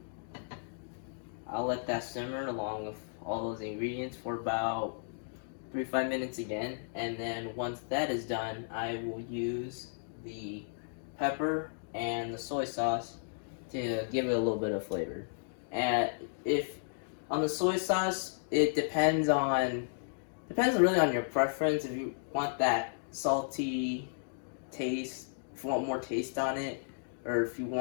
I'll let that simmer along with all those ingredients for about 3 to 5 minutes again, and then once that is done, I will use the pepper and the soy sauce to give it a little bit of flavor. And if on the soy sauce, it depends really on your preference. If you want that salty taste, if you want more taste on it, or if you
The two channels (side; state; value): right; silent; digital silence